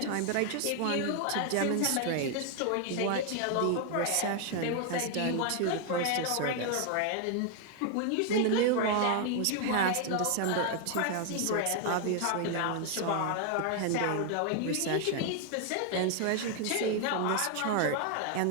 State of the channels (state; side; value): different; both; correlation 0.00